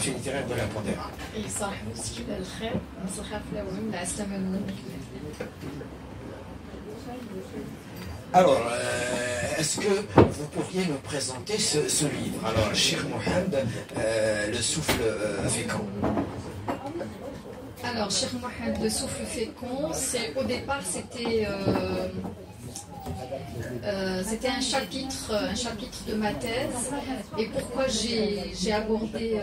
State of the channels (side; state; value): both; identical; correlation 1.00